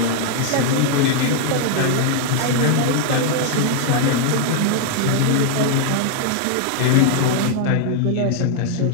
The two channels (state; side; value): different; both; correlation 0.00